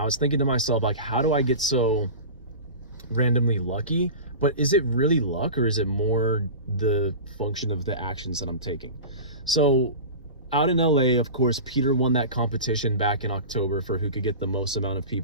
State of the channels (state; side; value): inverted; both; correlation -0.32